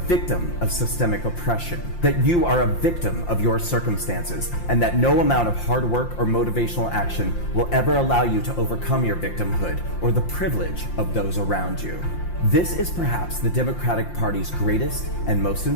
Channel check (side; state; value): right; late; 5.7 ms